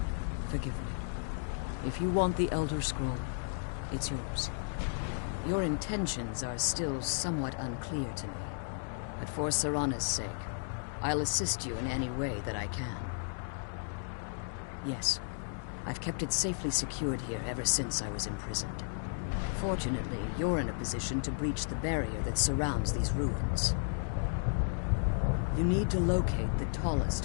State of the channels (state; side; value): silent; right; digital silence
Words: Forgive me. If you want the Elder Scroll, it's yours. Your intentions are still somewhat unclear to me. But for Serana's sake, I'll assist you in any way that I can. Yes, I've kept it safely secured here ever since I was imprisoned. Fortunately, you're in a position to breach the barrier that surrounds these ruins. You need to locate the tallest